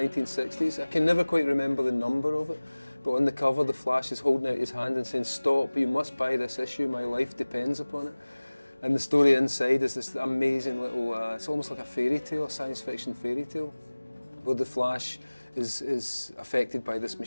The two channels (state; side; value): inverted; both; correlation -1.00